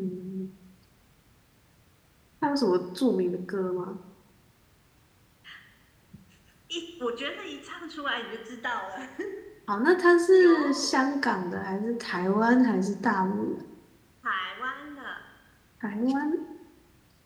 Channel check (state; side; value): identical; both; correlation 1.00